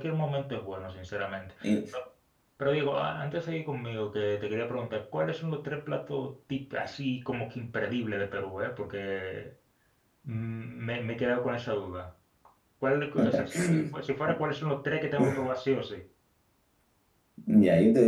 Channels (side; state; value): both; identical; correlation 1.00